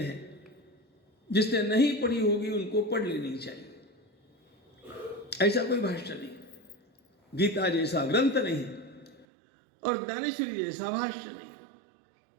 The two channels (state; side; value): drops out; left; at 9.2 s